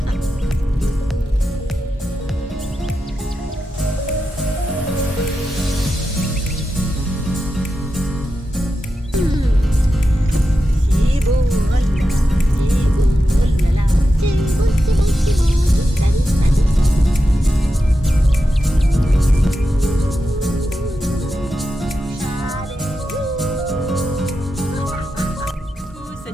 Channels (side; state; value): both; normal; correlation 0.90